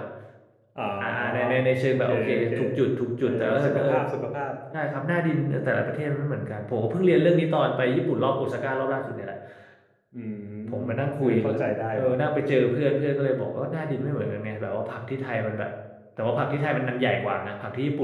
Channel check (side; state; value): both; identical; correlation 1.00